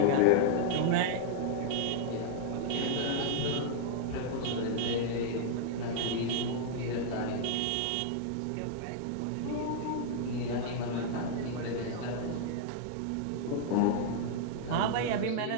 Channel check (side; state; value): both; different; correlation -0.01